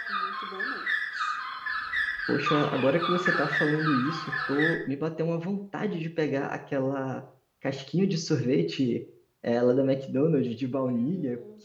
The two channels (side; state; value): both; identical; correlation 1.00